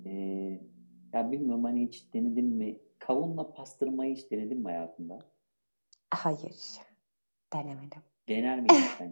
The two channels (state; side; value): inverted; both; correlation -1.00